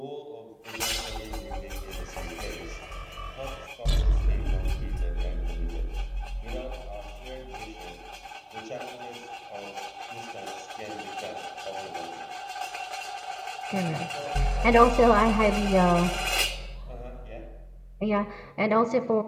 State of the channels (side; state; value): both; identical; correlation 1.00